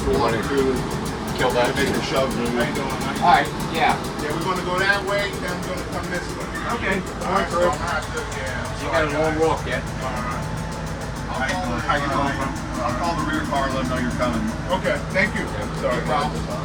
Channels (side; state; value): both; identical; correlation 1.00